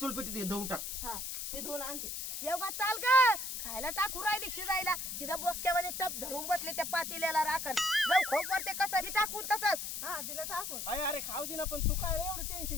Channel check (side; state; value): left; noise; hiss, 5 dB below the sound